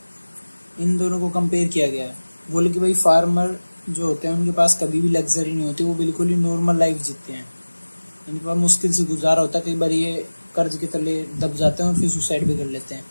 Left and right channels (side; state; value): both; inverted; correlation -1.00